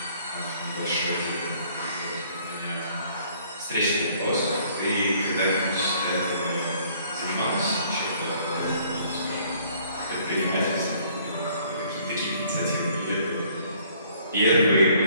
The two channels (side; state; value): both; inverted; correlation -0.60